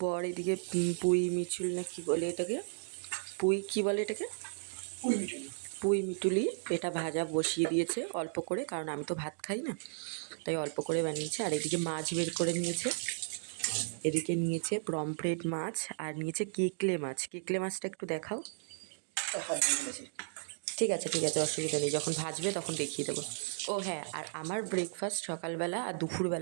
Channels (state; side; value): silent; left; digital silence